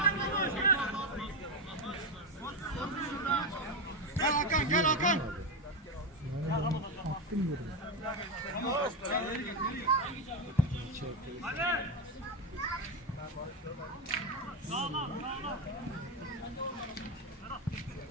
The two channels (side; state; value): both; normal; correlation 0.10